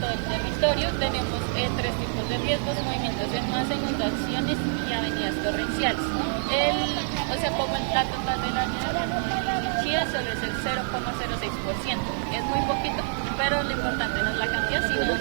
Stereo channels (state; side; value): silent; left; digital silence